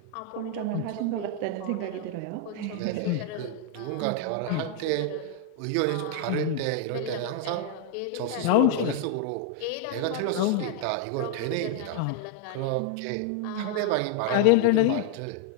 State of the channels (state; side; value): different; both; correlation 0.00